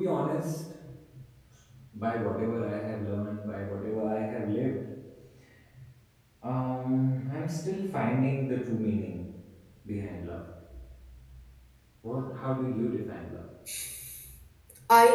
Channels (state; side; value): identical; both; correlation 1.00